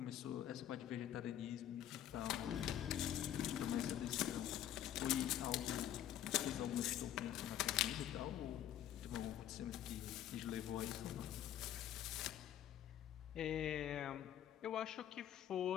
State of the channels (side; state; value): right; quieter; 11.3 dB